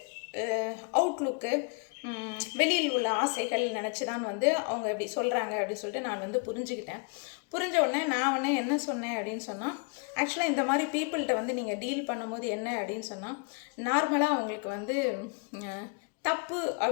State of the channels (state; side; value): quieter; right; 36.0 dB